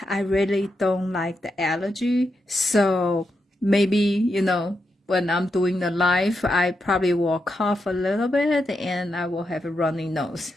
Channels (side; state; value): both; normal; correlation 0.85